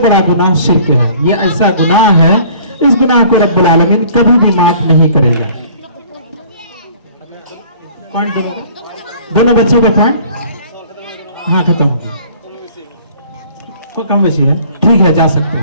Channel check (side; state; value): both; inverted; correlation -0.52